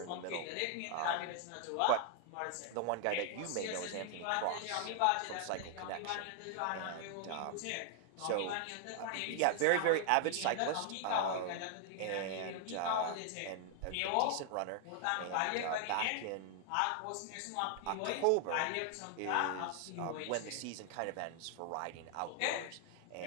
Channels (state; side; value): different; both; correlation 0.00